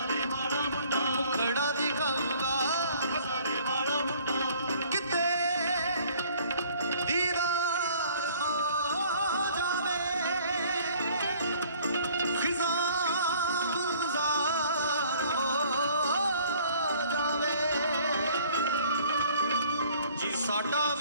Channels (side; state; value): both; inverted; correlation -0.55